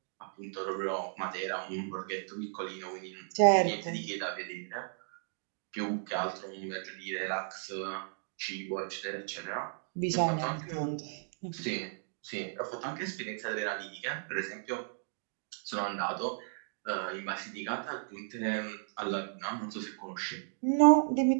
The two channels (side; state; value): left; silent; digital silence